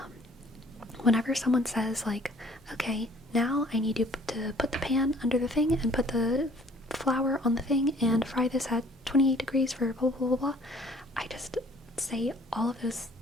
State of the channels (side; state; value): both; normal; correlation 0.56